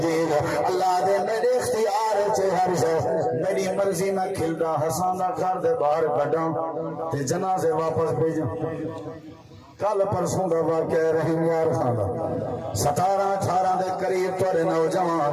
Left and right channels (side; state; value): both; identical; correlation 1.00